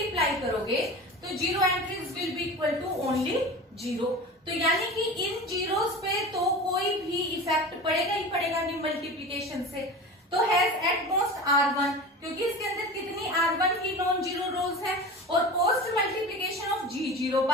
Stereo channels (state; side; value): normal; both; correlation 0.32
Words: करोगे तो zero entries will be equal to only zero. तो यानी कि इन जीरोस पे तो कोई भी इफेक्ट पड़ेगा ही पड़ेगा नहीं मल्टीप्लिकेशन से। तो हैज एट मोस्ट R1, क्योंकि इसके अंदर कितनी R1 की नॉन जीरो रोज है, और post multiplication of G0